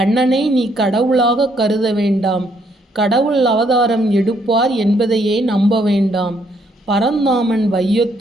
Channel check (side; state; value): both; normal; correlation 0.71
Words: நீ கடவுளாக கருத வேண்டாம், கடவுள் அவதாரம் எடுப்பார் என்பதையே நம்ப வேண்டாம். பரந்தாமன்